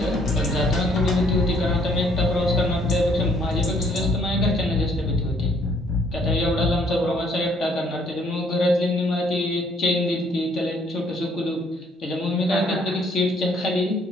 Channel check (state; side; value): normal; both; correlation 0.64